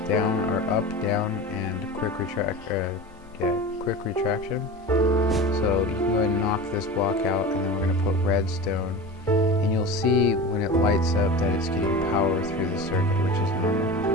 down or up, down, and quick retraction. So you can go ahead and knock this block out, and then we're going to put redstone, and you'll see when it lights up that it's getting power through the circuit, which is normal.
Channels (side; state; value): both; normal; correlation 0.31